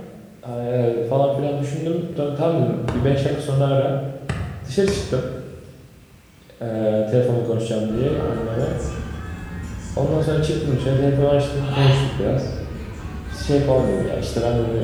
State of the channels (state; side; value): identical; both; correlation 1.00